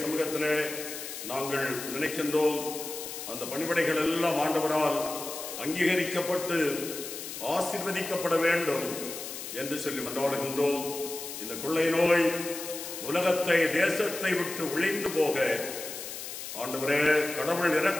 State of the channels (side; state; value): left; noise; hiss, 8 dB below the sound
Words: சமூகத்திலே நாங்கள் நினைக்கின்றோம். அந்த பணிவிடைகள் எல்லாம் ஆண்டவரால் அங்கீகரிக்கப்பட்டு ஆசீர்வதிக்கப்பட வேண்டும் என்று சொல்லி மன்றாடுகின்றோம். இந்த கொள்ளை நோய் உலகத்தை, தேசத்தை விட்டு ஒழிந்து போக ஆண்டவரே கடவுள்